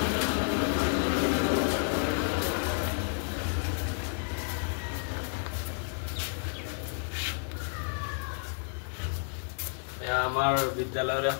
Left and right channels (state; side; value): silent; right; 57 dB below the other